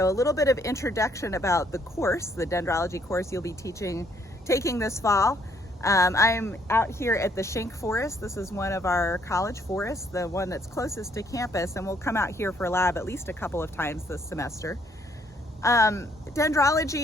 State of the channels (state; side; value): normal; both; correlation 0.68